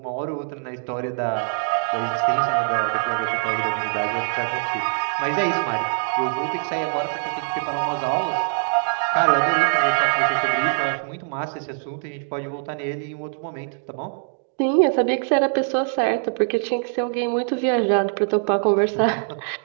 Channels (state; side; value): silent; left; digital silence